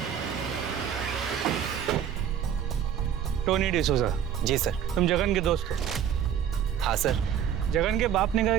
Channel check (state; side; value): quieter; left; 9.0 dB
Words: टोनी डिसोजा। जी सर। तुम जगन के दोस्त हो? हाँ सर। जगन के बाप ने कहा